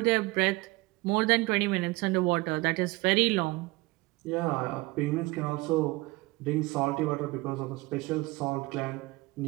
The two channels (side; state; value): left; quieter; 22.5 dB